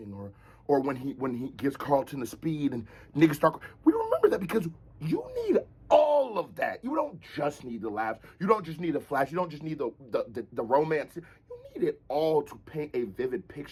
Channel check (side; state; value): both; identical; correlation 1.00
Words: or when he gives Carlton the speed and niggas start. We remember that because you need all of that. You don't just need the laughs. You don't just need the flash. You don't just need the romance. You need it all to paint a vivid